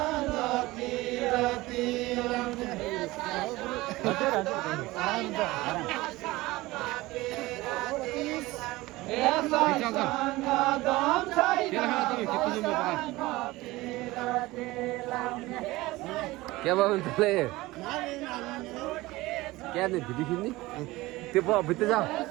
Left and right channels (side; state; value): left; quieter; 19.7 dB